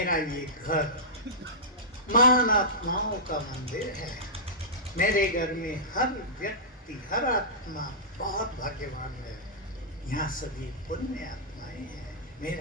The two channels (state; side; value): normal; both; correlation -0.15